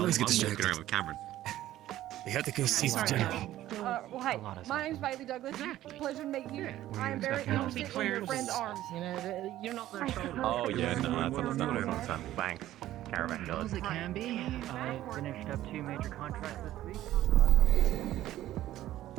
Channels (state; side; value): quieter; left; 14.0 dB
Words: always get I'm walking distracted. around with Cameron. We have to go see the general. Well, hey, my name's Bailey Douglas. Pleasure to meet you. I am very interested in your friend's arms. You know, you're not their shoulder. Oh yeah, no, that's understandable. Thanks. Caravan goes. It can be. I finished up 2 major contracts this week.